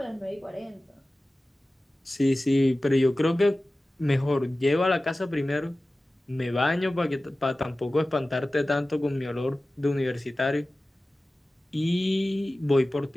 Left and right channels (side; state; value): both; normal; correlation 0.96